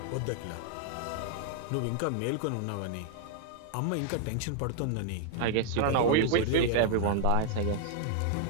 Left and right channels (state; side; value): different; both; correlation 0.00